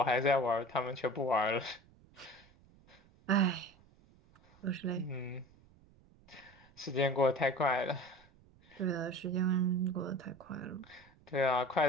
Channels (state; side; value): noise; right; rumble, 28 dB below the sound